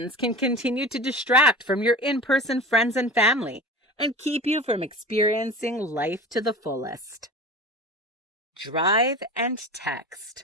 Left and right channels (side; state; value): both; normal; correlation 0.33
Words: can continue to distract from your in-person friends and family and keep you from experiencing life to the fullest. Drive and